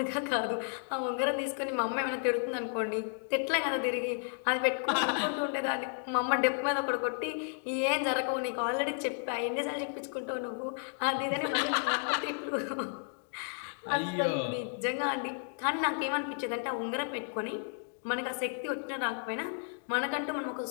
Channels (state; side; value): silent; right; 56 dB below the other